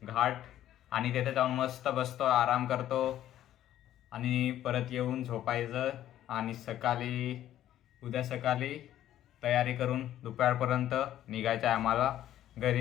घाट आणि तिथे जाऊन मस्त बसतो, आराम करतो आणि परत येऊन झोपायचं आणि उद्या सकाळी तयारी करून दुपारपर्यंत निघायचं आहे आम्हाला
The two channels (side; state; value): right; quieter; 12.3 dB